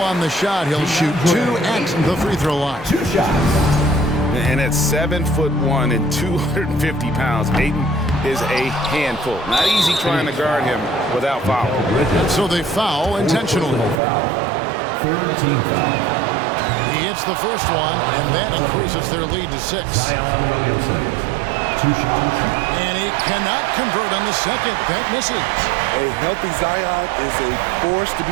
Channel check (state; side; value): drops out; left; at 14.0 s